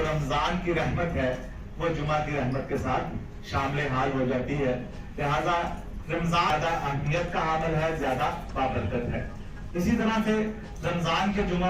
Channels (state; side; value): identical; both; correlation 1.00